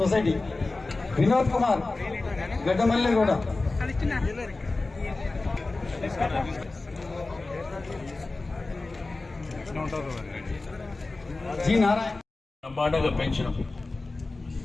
వినోద్ కుమార్ గడ్డమల్లిగూడ జి నారాయణ బ్రహ్మాండంగా పెంచడం,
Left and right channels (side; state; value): right; quieter; 3.4 dB